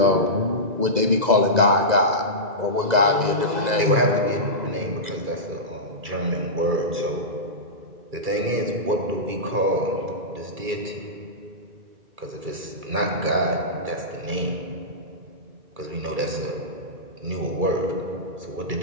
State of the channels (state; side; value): late; left; 2.0 ms